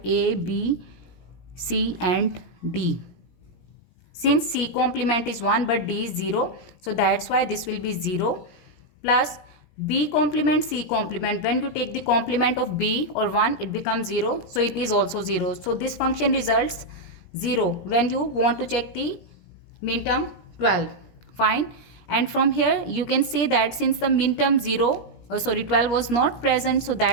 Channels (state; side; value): late; right; 17 ms